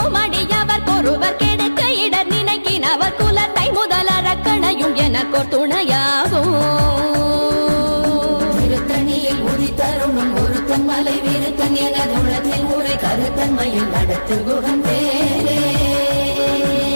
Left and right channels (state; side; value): inverted; both; correlation -1.00